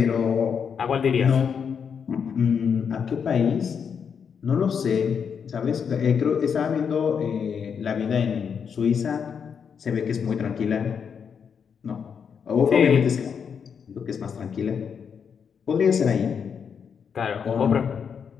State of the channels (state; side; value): quieter; right; 6.9 dB